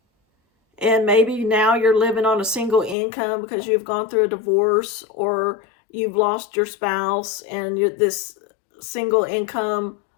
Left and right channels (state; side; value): drops out; right; at 3.0 s